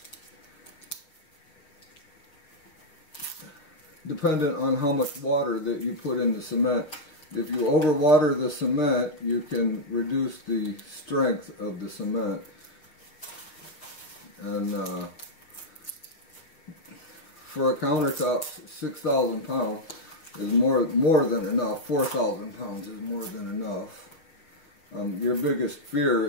dependent on how much water that you put in the cement. If you overwater the cement, you can reduce the strength of the cement. And for a countertop, 6,000 pounds is more than enough. 4,000 pounds is more than enough. Your biggest fear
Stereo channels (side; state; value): right; late; 6.1 ms